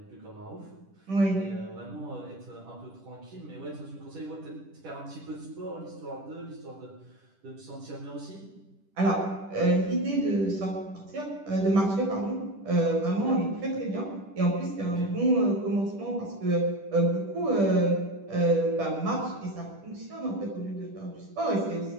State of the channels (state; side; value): late; left; 10 ms